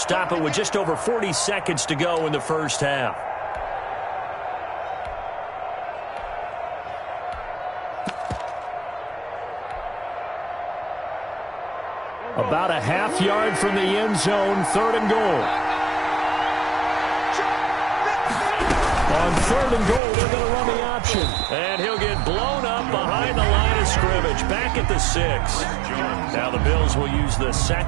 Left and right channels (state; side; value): drops out; left; at 20.0 s